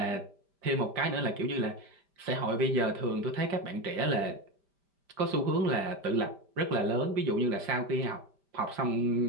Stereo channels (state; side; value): late; left; 5.1 ms